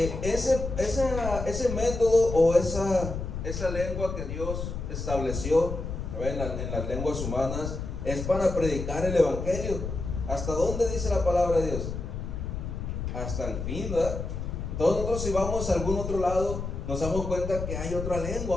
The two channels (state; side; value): noise; left; rumble, 5 dB below the sound